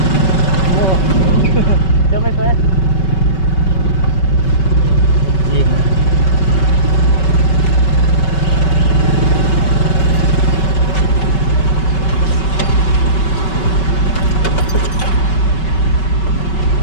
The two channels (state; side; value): late; right; 5.3 ms